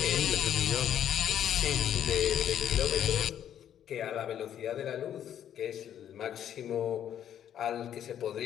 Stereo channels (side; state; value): right; quieter; 10.0 dB